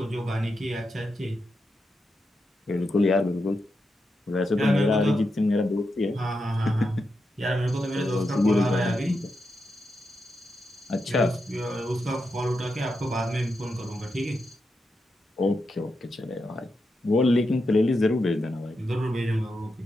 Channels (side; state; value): both; normal; correlation 0.86